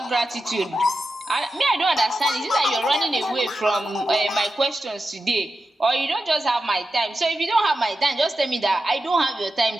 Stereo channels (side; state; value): both; normal; correlation 0.90